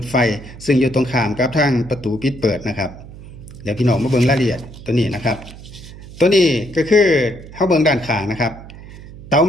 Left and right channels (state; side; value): noise; right; hum, 16 dB below the sound